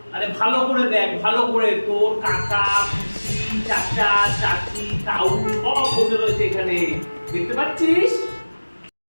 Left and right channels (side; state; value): both; inverted; correlation -1.00